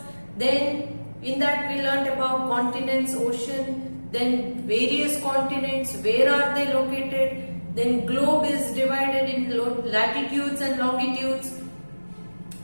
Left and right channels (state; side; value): inverted; both; correlation -1.00